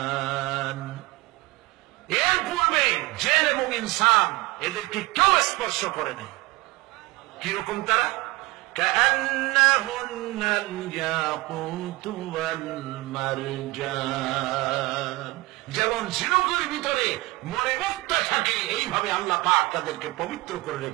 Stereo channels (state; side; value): quieter; left; 22.1 dB